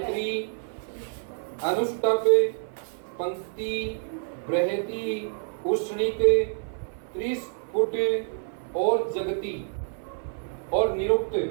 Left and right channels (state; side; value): silent; left; 60 dB below the other